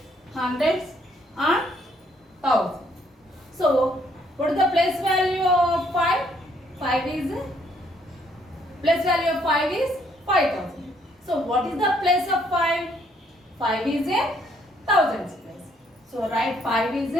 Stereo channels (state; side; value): normal; both; correlation 0.68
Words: hundreds, and thousands. So what is the place value of 5? 5 is place value of 5 is 5000. So what is the place of 5? 5 is in thousands place. So write 5 is